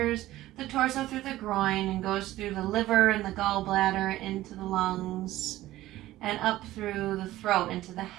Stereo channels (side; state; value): left; quieter; 15.7 dB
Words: the torso through the groin and goes through the liver and the gallbladder into the lungs and up through the throat into the